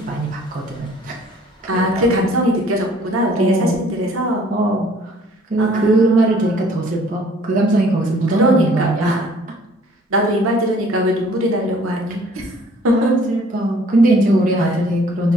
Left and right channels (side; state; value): both; normal; correlation 0.56